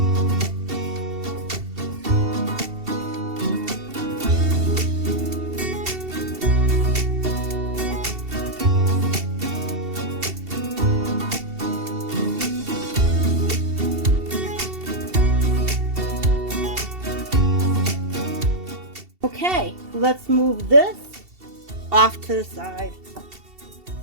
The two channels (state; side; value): late; left; 2.7 ms